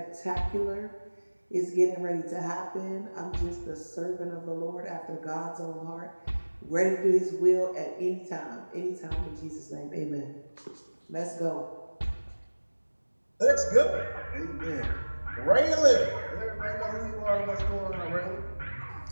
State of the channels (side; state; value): both; inverted; correlation -1.00